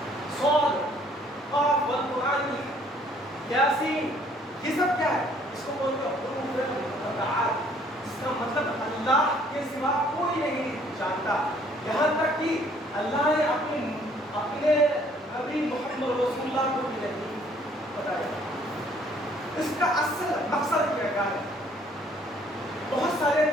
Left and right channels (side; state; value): both; normal; correlation 0.61